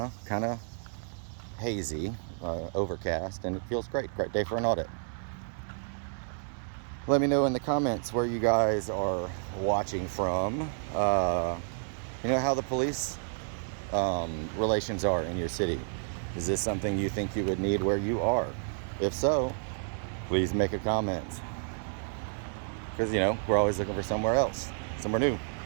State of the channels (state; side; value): silent; left; digital silence